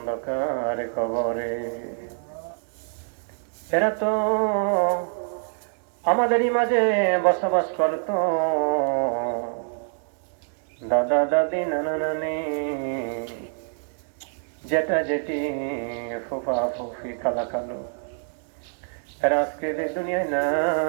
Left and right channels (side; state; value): left; silent; digital silence